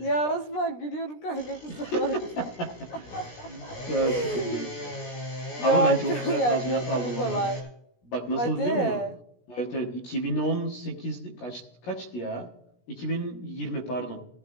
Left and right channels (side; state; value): right; late; 17 ms